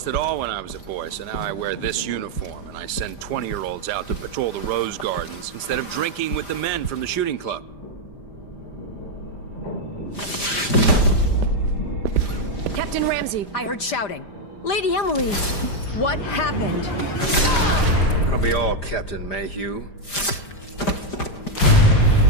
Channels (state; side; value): late; right; 5.0 ms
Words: it all when I was a boy, so now I wear this uniform, and I send 20-year-olds out to patrol the Rose Gardens instead of drinking with the men from the shooting club. Captain Ramsey, I heard shouting. Lady Emily, what happened? That'll be all, Captain Mayhew.